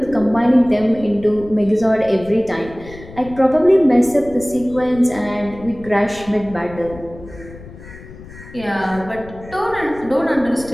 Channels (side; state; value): left; noise; rumble, 17 dB below the sound